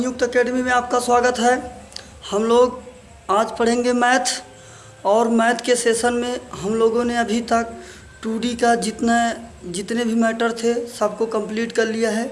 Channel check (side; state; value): both; identical; correlation 1.00